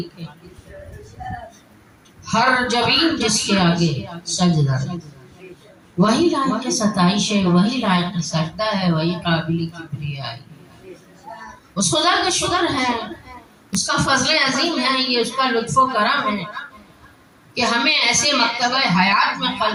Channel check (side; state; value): both; identical; correlation 1.00